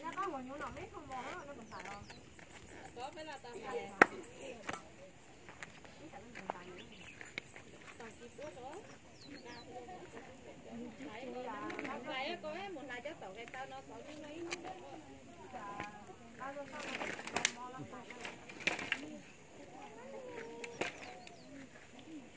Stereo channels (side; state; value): both; identical; correlation 1.00